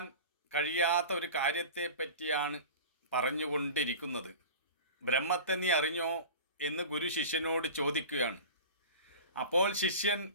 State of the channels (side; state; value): both; inverted; correlation -0.35